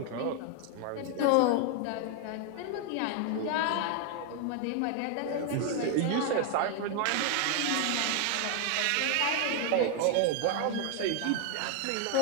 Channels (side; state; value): both; different; correlation 0.00